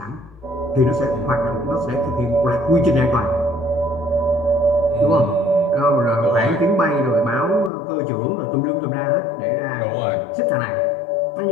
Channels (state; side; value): drops out; right; at 7.7 s